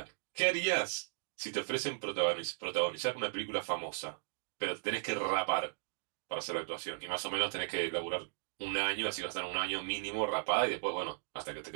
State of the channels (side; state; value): left; silent; digital silence